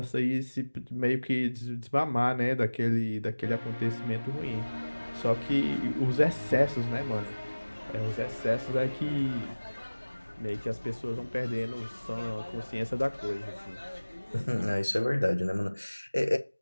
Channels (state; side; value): inverted; both; correlation -1.00